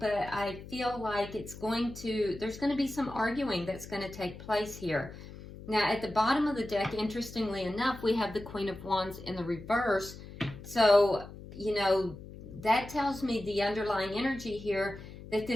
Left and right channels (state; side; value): noise; left; hum, 14 dB below the sound